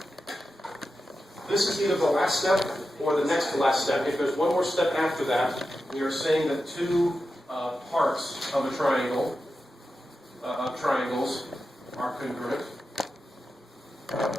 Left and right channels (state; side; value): normal; both; correlation 0.91